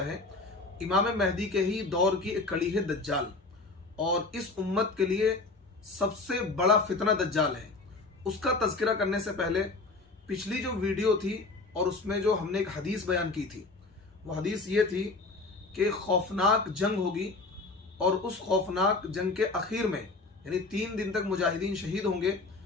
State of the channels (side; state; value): right; quieter; 3.5 dB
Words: है। इमाम महदी के ही दौर की एक कड़ी है दज्जाल, और इस उम्मत के लिए सबसे बड़ा फितना दज्जाल है। उसका तज़किरा करने से पहले पिछली जो वीडियो थी और उसमें जो हमने एक हदीस बयान की थी, वो हदीस ये थी कि खौफनाक जंग होगी और उस खौफनाक जंग के आखिर में यानी 3 दिन तक मुजाहिदीन शहीद होंगे।